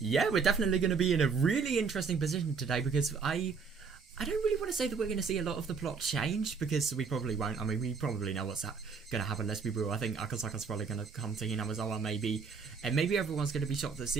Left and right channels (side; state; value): left; quieter; 5.4 dB